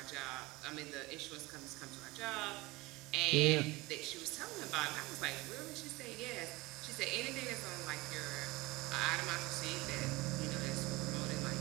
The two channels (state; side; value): quieter; left; 21.8 dB